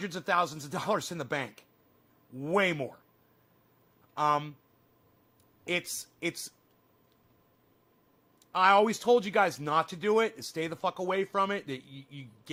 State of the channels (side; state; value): both; identical; correlation 1.00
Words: of thousands of dollars in the bank. Way more. It's I always told you guys not to do it, to stay the fuck away from it, that you